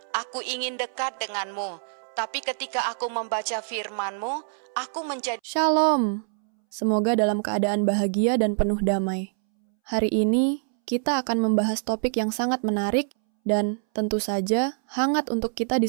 aku ingin dekat denganmu." Tapi ketika aku membaca firman-Mu, aku menjadi Shalom. Semoga dalam keadaan bahagia dan penuh damai. Hari ini kita akan membahas topik yang sangat menarik dan tentu saja hangat untuk kita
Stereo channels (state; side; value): silent; left; 62 dB below the other